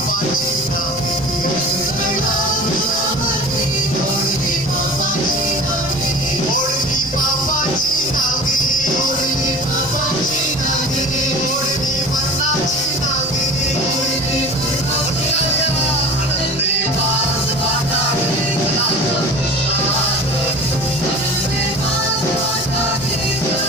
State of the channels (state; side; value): noise; right; rumble, 20 dB below the sound